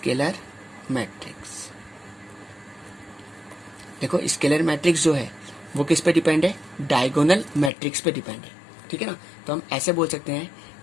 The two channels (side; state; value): right; drops out; at 7.7 s